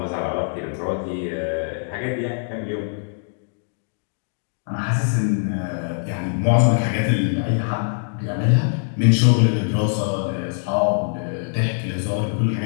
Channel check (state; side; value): silent; right; digital silence